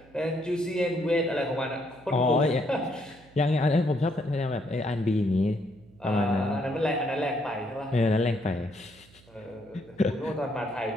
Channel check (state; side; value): noise; right; hum, 26 dB below the sound